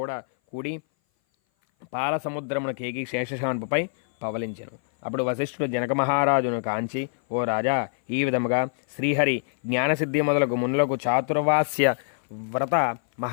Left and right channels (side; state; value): right; silent; 58 dB below the other